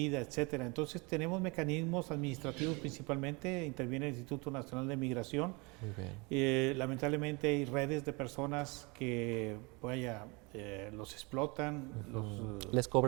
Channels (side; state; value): left; quieter; 28.1 dB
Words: etcétera. Entonces tenemos mecanismos administrativos principalmente, interviene el Instituto Nacional de Migración. Lamentablemente hay redes de personas que los explotan, ¿Les